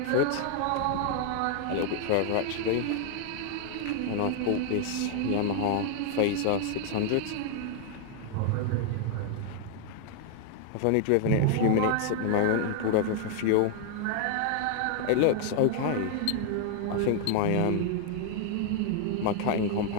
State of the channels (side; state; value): both; different; correlation 0.00